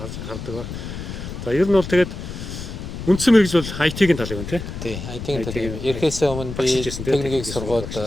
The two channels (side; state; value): left; noise; rumble, 8 dB below the sound